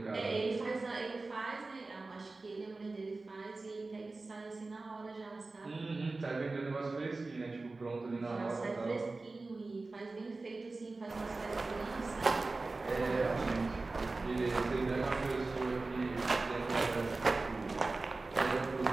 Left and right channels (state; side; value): quieter; left; 3.5 dB